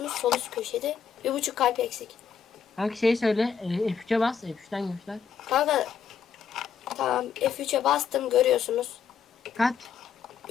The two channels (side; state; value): right; quieter; 7.0 dB